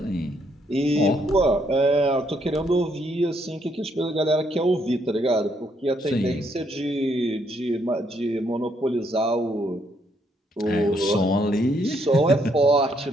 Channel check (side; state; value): both; normal; correlation 0.72